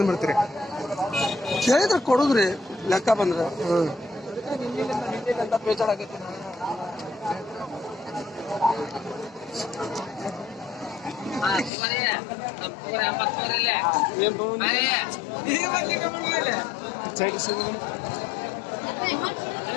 ಬಿಡ್ತೀರಿ ಕೇಳಿದ್ರೆ ಕೊಡುದ್ರಿ ಲೆಕ್ಕ ಬಂದ್ರೆ ಅಣ್ಣ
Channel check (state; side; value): drops out; right; at 11.7 s